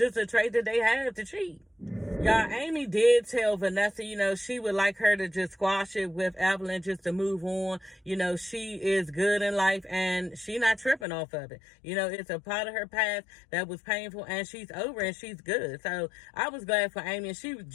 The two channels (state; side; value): drops out; right; at 11.1 s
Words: a trait that they have to cheat. Y'all, Amy did tell Vanessa, she would like her to just squash it with Evelyn just to move on. She is good in life and she not tripping off of it. It's a part of her past that was painful and she's over and she's good. So I was glad for Amy, and she